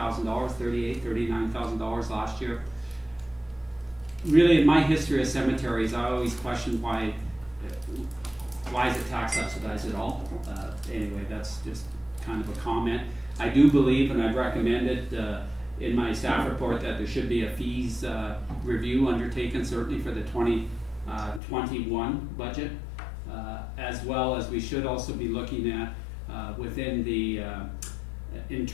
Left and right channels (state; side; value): drops out; right; at 21.4 s